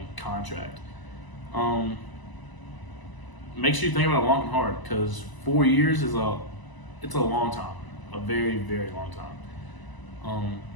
contract. Make sure you think about it long and hard, because 4 years is it's a long time, a very, very long time.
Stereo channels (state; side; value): late; right; 1.0 ms